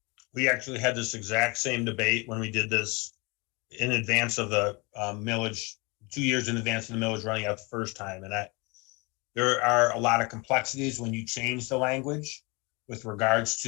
We actually had this exact same debate when we did this in advance of the millage, 2 years in advance of the millage running out the first time. And there are a lot of complexities when you change the language with regards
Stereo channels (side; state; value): right; quieter; 27.9 dB